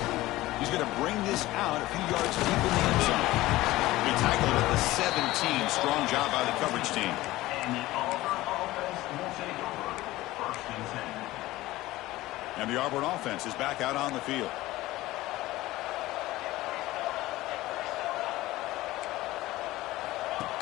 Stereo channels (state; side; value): quieter; right; 17.6 dB